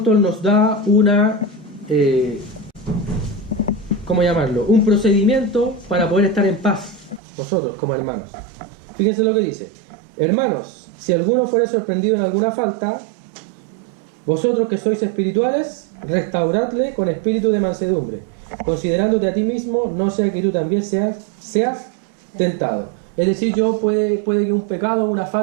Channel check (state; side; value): drops out; left; at 7.2 s